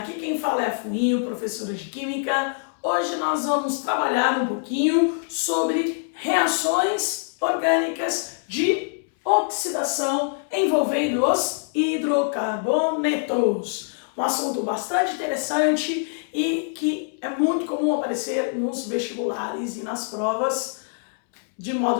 quem fala é a Fuinho, professora de Química. Hoje nós vamos trabalhar um pouquinho sobre reações orgânicas de oxidação envolvendo os hidrocarbonetos. Um assunto bastante interessante e que é muito comum aparecer nos vestibulares e nas provas de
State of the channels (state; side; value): silent; right; 62 dB below the other